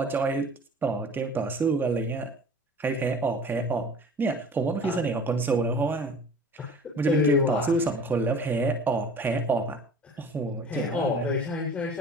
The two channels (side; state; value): both; normal; correlation 0.44